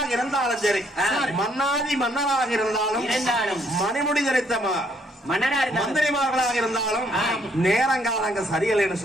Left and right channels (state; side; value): normal; both; correlation 0.68